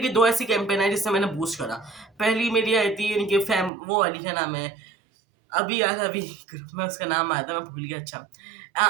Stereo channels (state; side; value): drops out; left; at 3.7 s